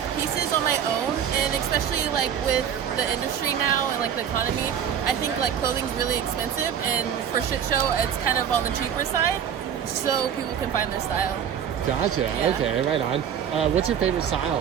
pieces on my own, and especially like with the industry now and like the economy, I think like clothing's really expensive, and for shit show, it's kind of on the cheaper side, so people can find their style. Gotcha. Yeah. Okay, right on. What's your favorite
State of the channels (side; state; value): left; quieter; 8.6 dB